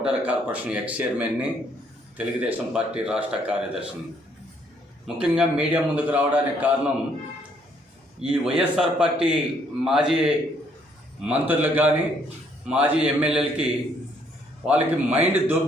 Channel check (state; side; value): normal; both; correlation 0.67